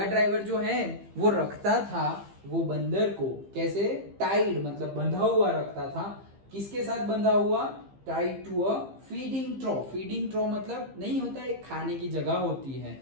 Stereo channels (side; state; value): left; late; 15 ms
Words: ड्राइवर जो है वो रखता था वो बंदर को, कैसे? टाइड मतलब बंधा हुआ रखता था। किसके साथ बंधा हुआ? Tied to a feeding trough. Feeding trough मतलब नहीं होता, एक खाने की जगह होती है,